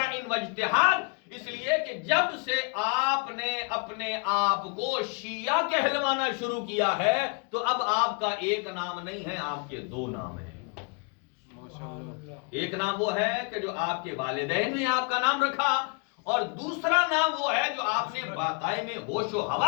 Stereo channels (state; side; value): quieter; right; 36.0 dB